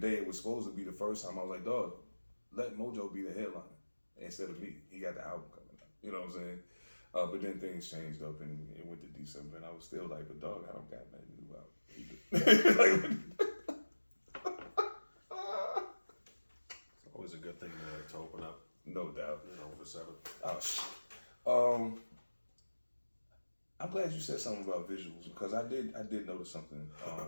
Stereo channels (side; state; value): both; inverted; correlation -1.00